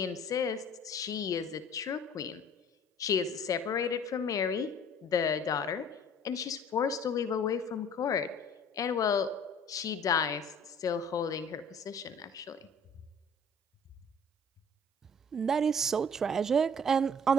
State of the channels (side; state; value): both; normal; correlation 0.50